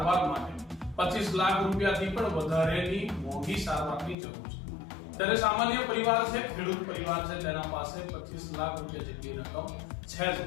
માટે 25 લાખ રૂપિયાથી પણ વધારેની મોંઘી સારવારની જરૂર છે। ત્યારે સામાન્ય પરિવાર છે, ખેડૂત પરિવાર છે, તેના પાસે 25 લાખ રૂપિયા જેટલી રકમ છે જ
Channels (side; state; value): right; drops out; at 4.2 s